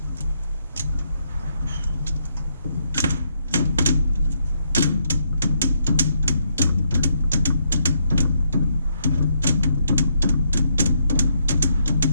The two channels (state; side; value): inverted; both; correlation -0.75